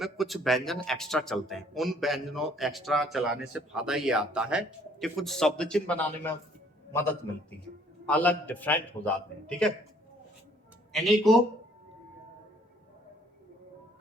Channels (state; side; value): normal; both; correlation 0.61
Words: कुछ व्यंजन एक्स्ट्रा चलते हैं, उन व्यंजनों एक्स्ट्रा चलाने से फायदा ये आता है कि कुछ शब्द चिन्ह बनाने में मदद मिलती है, अलग डिफरेंट हो जाते हैं, ठीक है। इन्हीं को